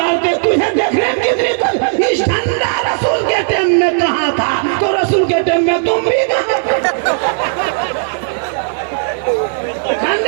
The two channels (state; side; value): silent; left; digital silence